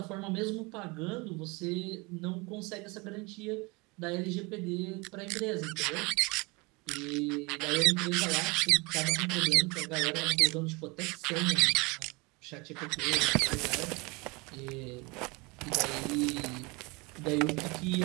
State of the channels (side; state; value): left; quieter; 26.8 dB